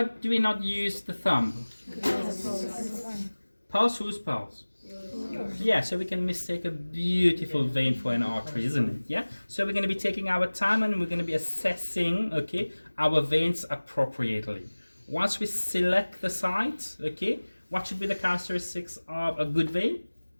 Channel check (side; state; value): both; inverted; correlation -1.00